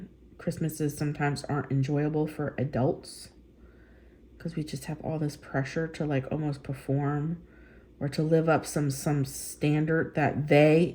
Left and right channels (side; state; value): both; identical; correlation 1.00